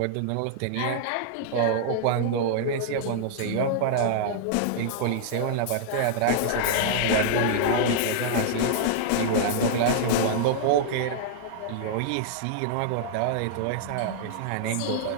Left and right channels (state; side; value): different; both; correlation -0.01